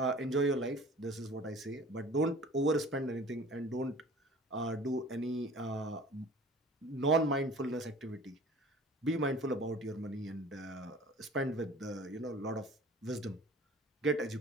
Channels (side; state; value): both; normal; correlation 0.45